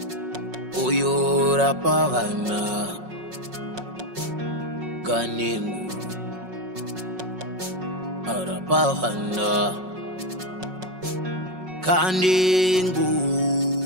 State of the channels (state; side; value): late; left; 5.4 ms